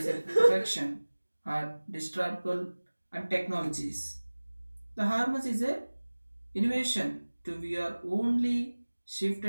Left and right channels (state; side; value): inverted; both; correlation -1.00